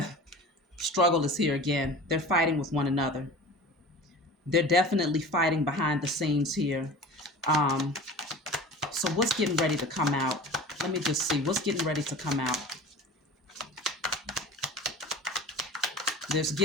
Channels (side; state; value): both; normal; correlation 0.38